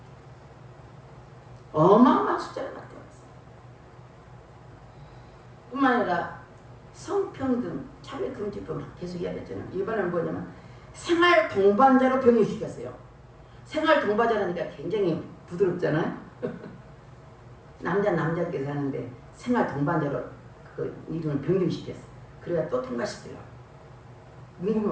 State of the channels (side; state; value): both; identical; correlation 1.00